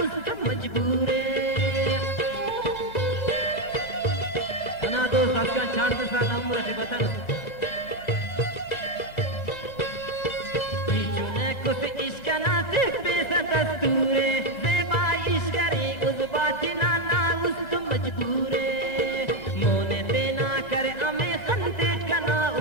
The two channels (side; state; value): right; late; 1.3 ms